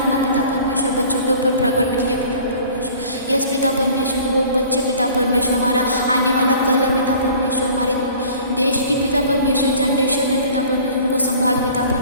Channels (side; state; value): both; inverted; correlation -0.47